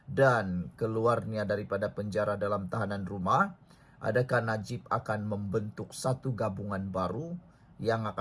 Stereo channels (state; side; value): identical; both; correlation 1.00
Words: dan keluarnya daripada penjara dalam tahanan rumah, adakah Najib akan membentuk satu gabungan baru yang